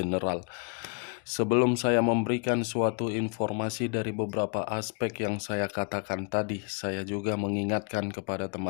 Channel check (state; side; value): quieter; right; 35.9 dB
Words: Sebelum saya memberikan suatu informasi dari beberapa aspek yang saya katakan tadi, saya juga mengingatkan kepada